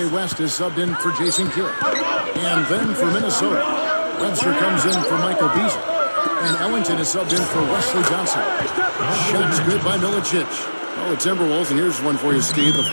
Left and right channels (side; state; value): both; inverted; correlation -1.00